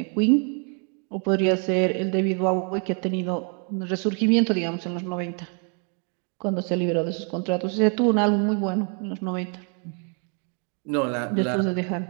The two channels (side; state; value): left; quieter; 39.4 dB